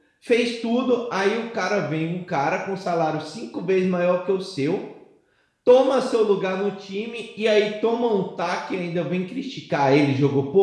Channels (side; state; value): both; identical; correlation 1.00